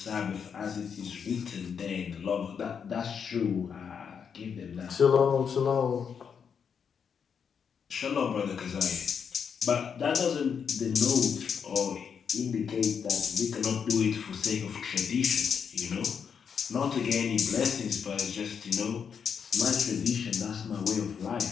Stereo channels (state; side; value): quieter; right; 6.9 dB